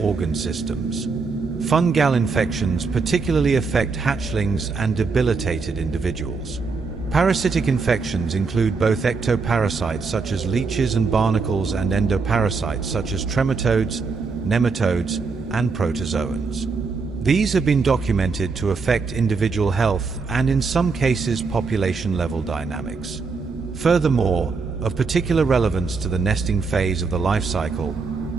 systems. Fungal infections particularly affect hatchlings and debilitated individuals. Parasitic infections include both ectoparasites such as leeches and barnacles and endoparasites such as trematodes, nematodes, and protozoans. These have been documented to affect individual health and in some cases population-level dynamics. Furthermore, of particular relevance to the nesting phase of the life cycle,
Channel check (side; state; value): left; quieter; 4.7 dB